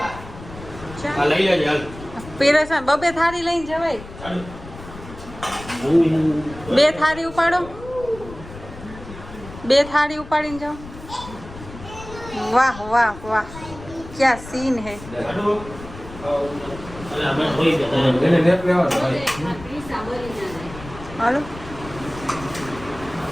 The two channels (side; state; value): left; noise; rumble, 15 dB below the sound